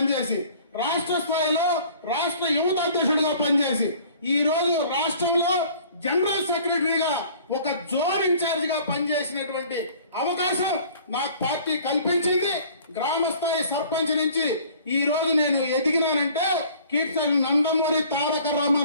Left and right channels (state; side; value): inverted; both; correlation -0.51